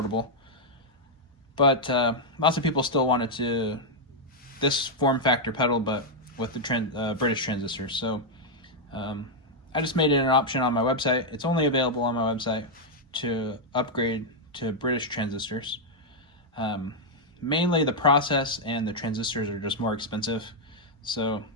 but lots of people still wanted this form factor pedal, but with the British transistors. So I just made it an option on my website. It's only available on my website to upgrade to British transistors. Mainly the process and the transistors are just more expensive, so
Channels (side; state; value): both; normal; correlation -0.02